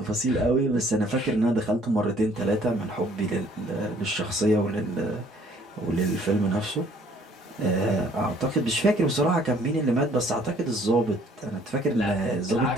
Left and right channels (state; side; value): normal; both; correlation 0.59